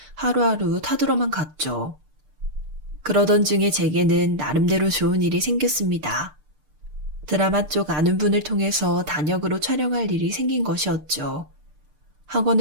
하루하루 타들어만 갔죠. 그러던 중에 제게는 나름대로 좋은 일이 생겼습니다. 드라마 쪽 아는 분을 통해서 단역으로 촬영할 일이 생긴 것이었죠.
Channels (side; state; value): left; late; 6.7 ms